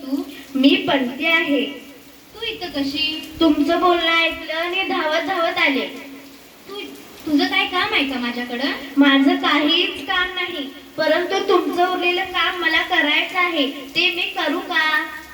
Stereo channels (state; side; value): identical; both; correlation 1.00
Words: तू? मी पंती आहे. तू इथं कशी? तुमचं बोलणं ऐकलं आणि धावत धावत आले. तुझं काय काम आहे का माझ्याकडं? माझं काहीच काम नाही, परंतु तुमचं उरलेलं काम मला करायचं आहे. ते मी करू का?